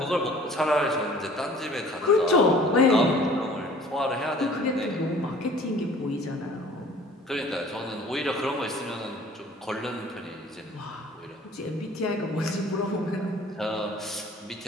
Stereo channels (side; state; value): both; normal; correlation 0.50